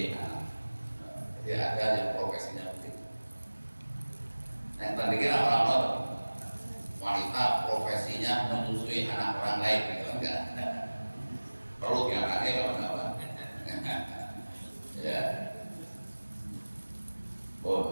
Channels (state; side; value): inverted; both; correlation -1.00